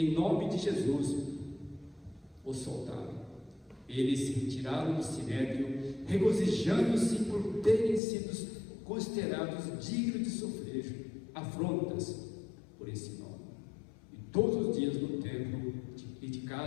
nome de Jesus, os soltaram. Eles se retiraram do sinédrio, regozijando-se por terem sido considerados dignos de sofrer afrontas por esse nome. E todos os dias no templo e de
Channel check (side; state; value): right; drops out; at 8.0 s